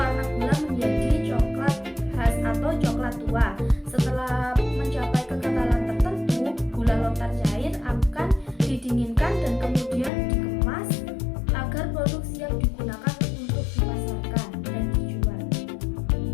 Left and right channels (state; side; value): drops out; right; at 10.1 s